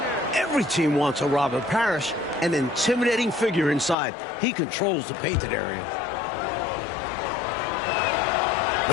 Every team wants a Robert Parrish, an intimidating figure inside. He controls the painted area.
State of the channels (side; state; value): right; drops out; at 4.0 s